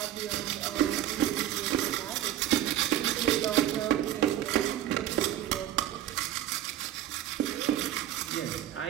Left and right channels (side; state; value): left; quieter; 12.2 dB